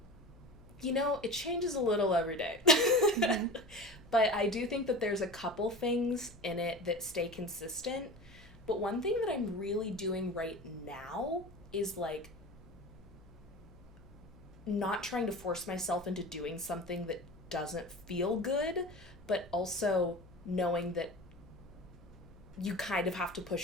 It changes a little every day. Mm-hmm. But I do think that there's a couple things in it that stay consistent. But one thing that I'm really doing right now is like not trying to force myself into doing something that doesn't feel good, but also knowing that you kind of have to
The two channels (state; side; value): noise; left; hum, 23 dB below the sound